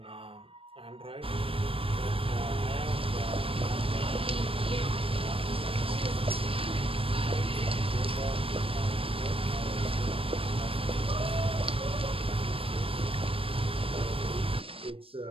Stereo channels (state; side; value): late; left; 0.27 ms